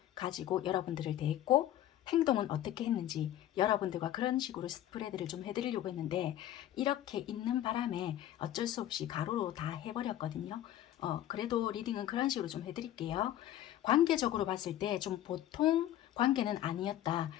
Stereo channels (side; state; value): right; quieter; 12.6 dB